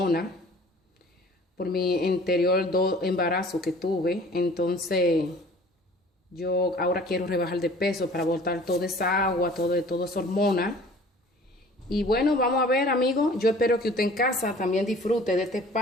por mi anterior 2 embarazos que tuve. Entonces, yo ahora quiero rebajar de peso para botar toda esa agua, toda esa hormona. Y bueno, vamos a ver, amigos. Yo espero que usted en casa también disfrute de este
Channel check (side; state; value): both; normal; correlation 0.48